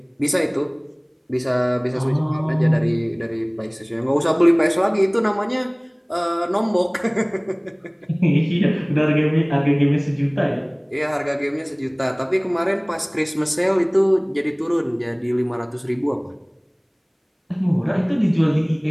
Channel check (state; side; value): identical; both; correlation 1.00